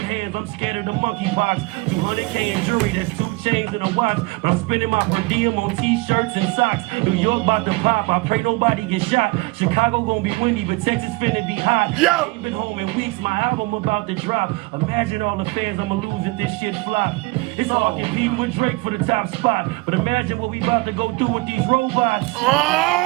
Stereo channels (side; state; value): left; quieter; 23.9 dB